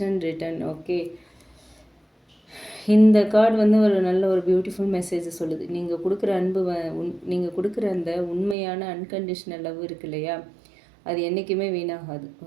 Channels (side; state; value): left; drops out; at 8.6 s